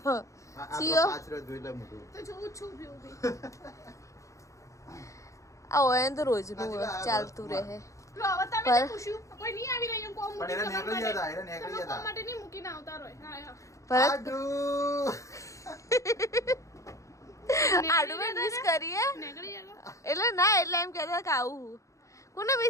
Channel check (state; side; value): late; right; 0.15 ms